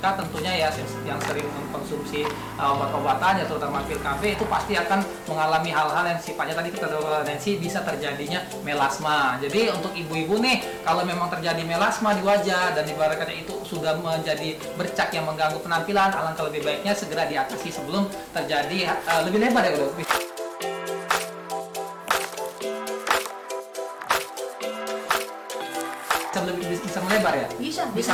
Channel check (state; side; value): identical; both; correlation 1.00